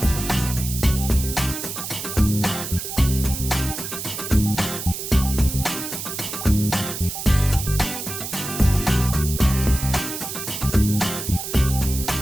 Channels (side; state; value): right; noise; hiss, 6 dB below the sound